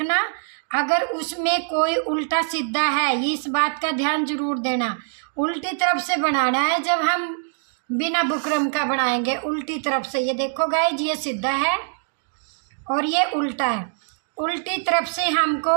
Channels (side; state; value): left; silent; digital silence